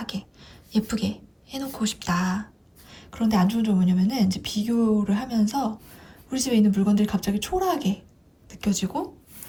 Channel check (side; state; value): both; identical; correlation 1.00